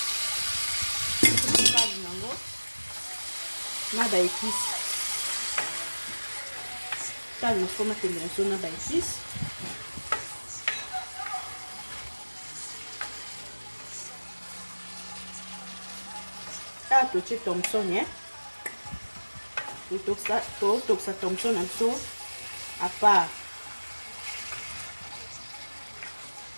Kazi nango na ba épice. Kazi na sikoyo matembele na biso na ba épice. Ah, totie Thomson, hein. Totokisa Thomson na biso à part.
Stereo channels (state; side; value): inverted; both; correlation -1.00